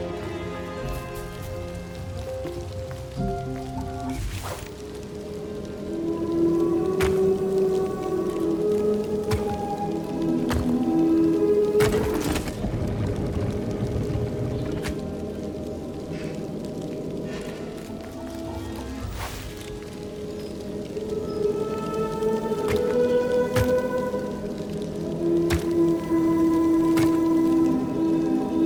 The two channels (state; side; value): identical; both; correlation 1.00